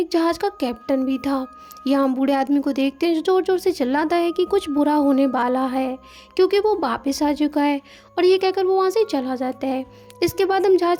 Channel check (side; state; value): both; identical; correlation 1.00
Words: जहाज का कैप्टन भी था। यहाँ बूढ़े आदमी को देखते हैं जो जोर जोर से चिल्लाता है कि कुछ बुरा होने वाला है, क्योंकि वो वापस आ चुका है। और ये कहकर वो वहाँ से चला जाता है। इसके बाद हम